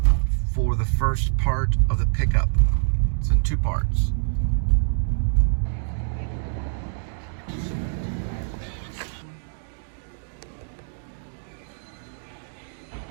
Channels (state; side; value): silent; left; digital silence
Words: for the first part of the pickup. It's in 2 parts.